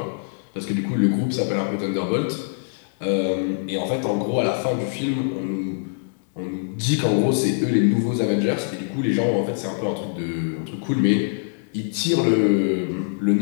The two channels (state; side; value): silent; right; digital silence